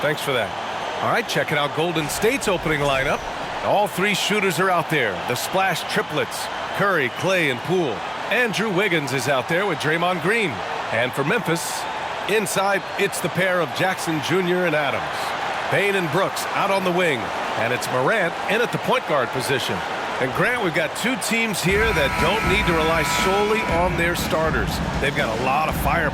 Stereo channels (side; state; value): both; identical; correlation 1.00